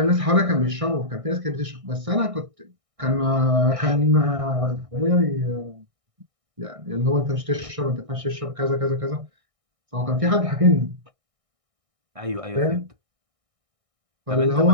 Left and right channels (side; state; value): left; late; 1.6 ms